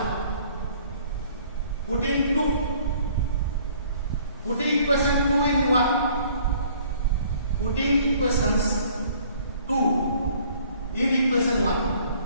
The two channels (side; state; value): both; inverted; correlation -0.57